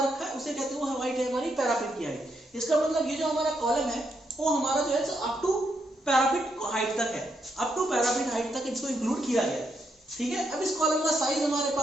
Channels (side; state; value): both; normal; correlation 0.79